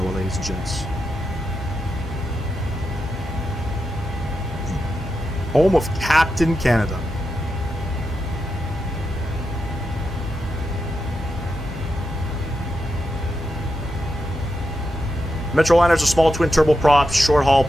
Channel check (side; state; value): both; normal; correlation 0.87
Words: ladies and gents. Home of Captain Canada. Metroliner's a small twin turboprop short haul